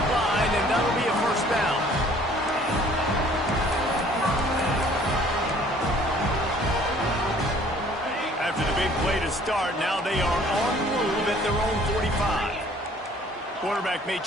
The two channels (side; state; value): both; normal; correlation 0.56